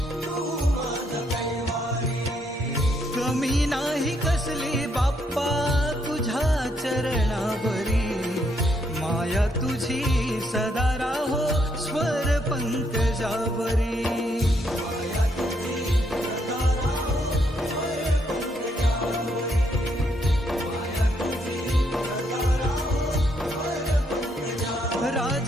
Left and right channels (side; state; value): both; normal; correlation 0.74